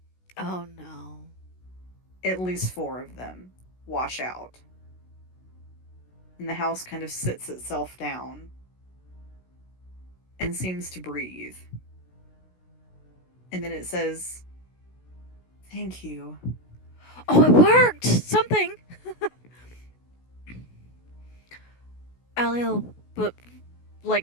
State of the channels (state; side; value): late; right; 16 ms